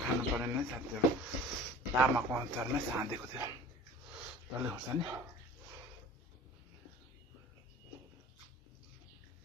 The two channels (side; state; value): both; normal; correlation 0.43